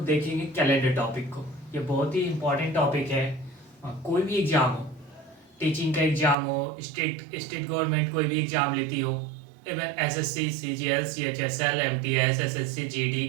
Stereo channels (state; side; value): drops out; left; at 6.4 s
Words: देखेंगे कैलेंडर टॉपिक को। ये बहुत ही इम्पोर्टेंट टॉपिक है। कोई भी एग्ज़ाम हो, टीचिंग का एग्ज़ाम हो, स्टेट गवर्नमेंट कोई भी एग्ज़ाम लेती हो, even SSC, CGL, CHSL, MTS, SSC, GD,